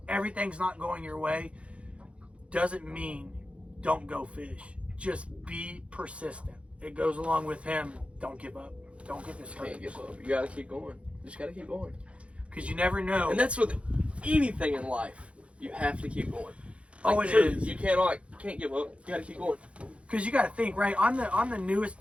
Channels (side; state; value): left; late; 0.061 ms